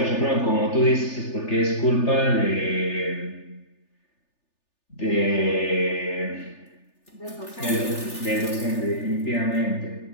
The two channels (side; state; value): right; late; 3.4 ms